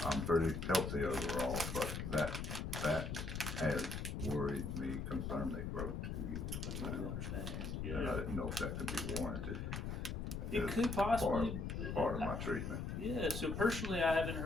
I'm pretty healthy overall, but that has worried me, concerned me for over 2 years. I understand. Yeah. And I didn't know if that could be warranted. It could possibly part of my treatment. Yeah. So personally, I haven't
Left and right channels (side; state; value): left; noise; rumble, 3 dB below the sound